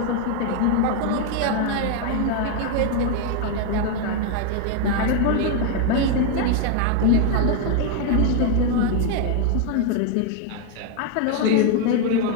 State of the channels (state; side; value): different; both; correlation 0.01